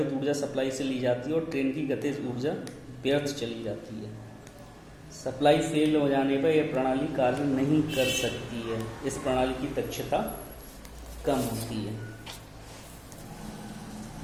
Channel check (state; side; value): identical; both; correlation 1.00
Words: ऊर्जा सप्लाई से ली जाती है और ट्रेन की गतिज ऊर्जा व्यर्थ चली जाती है। सप्लाई फेल हो जाने पर यह प्रणाली कार्य नहीं कर सकती है। इस प्रणाली की दक्षता कम होती है।